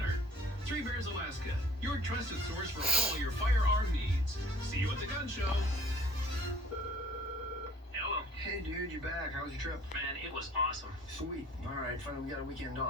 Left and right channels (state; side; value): normal; both; correlation 0.53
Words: Three Bears Alaska, your trusted source for all your firearm needs. See you at the gun show. Hey dude, you back? How was your trip? Man, it was awesome. Sweet. Alright, finally we got a weekend